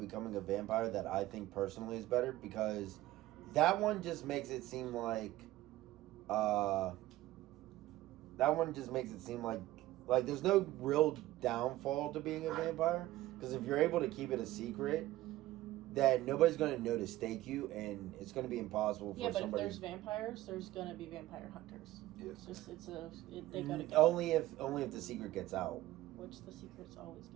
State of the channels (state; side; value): quieter; left; 16.1 dB